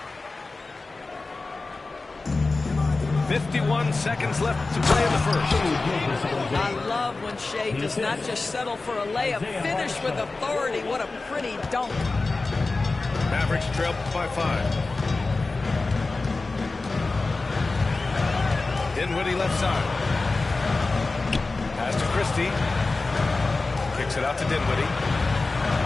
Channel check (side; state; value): right; quieter; 3.6 dB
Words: Seconds left to play in the first. I love when Shea does not just settle for a layup, finish with authority. What a pretty dunk. Mavericks trail by 5. Dinwiddie left side. Pass to Christie. Kicks it out to Dinwiddie.